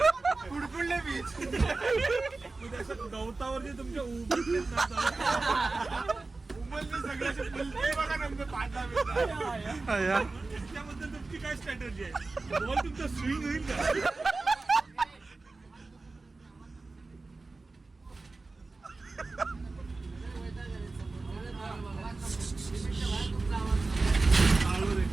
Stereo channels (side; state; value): left; quieter; 3.6 dB